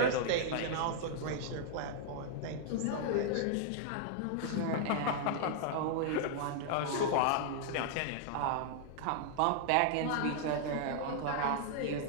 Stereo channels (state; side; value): different; both; correlation -0.01